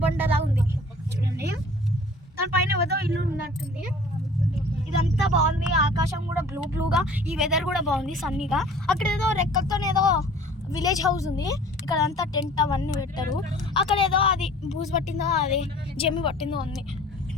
ఉంది చూడండి, దానిపైన ఏదో ఇల్లు ఉన్నట్టుంది. ఇదంతా బాగుంది. ఆకాశం కూడా బ్లూగా, ఈ వెదర్ కూడా బాగుంది, సన్నీగా. అక్కడ ఏదో రెక్కలతో ఏదో విలేజ్ హౌస్ ఉంది. ఇక్కడ అంతా టెంట్ అవన్నీ పెట్టారు. అక్కడ ఏదో అది బూజు పట్టిందో, అది జమ్మి పట్టిందో ఉంది.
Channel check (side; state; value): both; normal; correlation 0.48